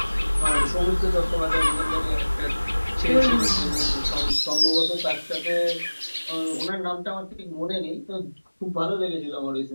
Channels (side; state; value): both; inverted; correlation -1.00